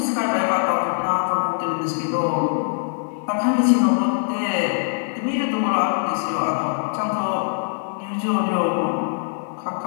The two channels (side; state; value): right; silent; 64 dB below the other